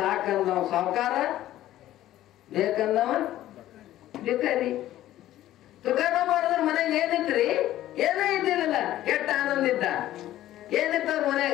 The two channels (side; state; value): right; quieter; 13.8 dB